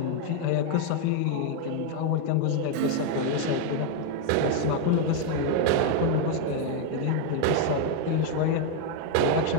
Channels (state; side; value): different; both; correlation 0.01